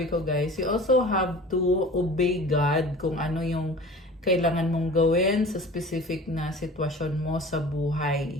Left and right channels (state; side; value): normal; both; correlation 0.40